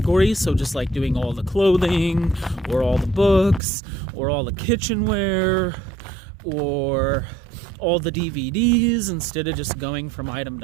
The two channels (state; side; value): drops out; left; at 3.6 s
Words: so just like doing all the clothing, or all the books, or all the kitchenware, or all the DVDs, instead of just going from item